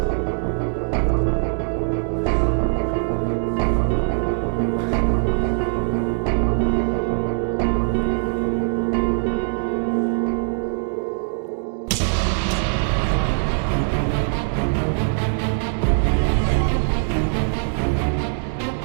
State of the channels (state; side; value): silent; left; digital silence